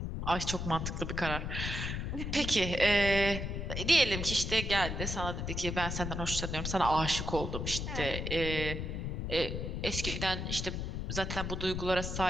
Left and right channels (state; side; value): noise; left; rumble, 3 dB below the sound